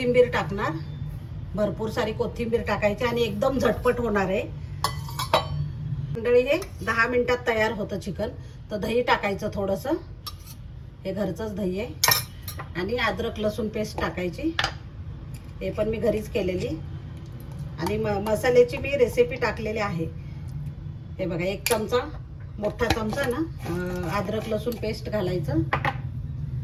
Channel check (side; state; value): both; identical; correlation 1.00